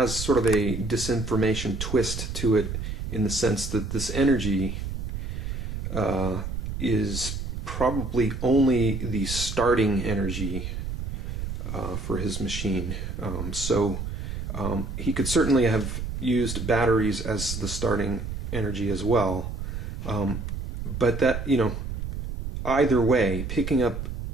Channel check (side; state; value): right; noise; rumble, 5 dB below the sound